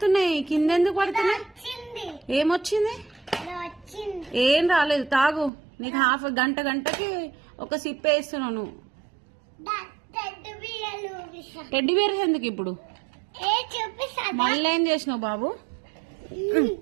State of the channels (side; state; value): left; drops out; at 5.5 s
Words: కింద ఎందుకు పడుతున్నాయి? ఏమొచ్చింది? ఏం రాలేదు. తాగు. నీకు గంటకి ఒక సిప్ వేస్తున్నావు నువ్వు. టెడ్డీ బేర్ ఎందుకు ఇప్పుడు? మళ్ళీ ఏం చేసినావు బాబు?